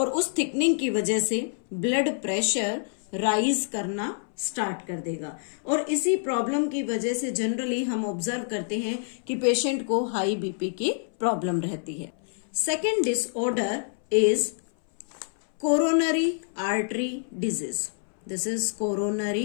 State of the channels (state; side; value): silent; right; 60 dB below the other